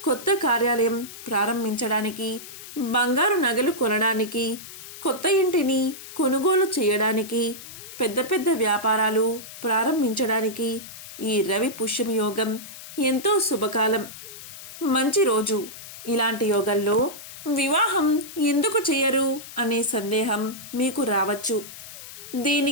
కొత్త కార్యాలయం ప్రారంభించడానికి, బంగారు నగలు కొనడానికి, కొత్త ఇంటిని కొనుగోలు చేయడానికి, పెద్ద పెద్ద వ్యాపారాలు ప్రారంభించడానికి ఈ రవి పుష్యమి యోగం ఎంతో శుభకాలం, మంచి రోజు. ఇలాంటి యోగంలో వివాహం ఎందుకు చేయరు అనే సందేహం మీకు రావచ్చు.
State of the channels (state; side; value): noise; left; hiss, 14 dB below the sound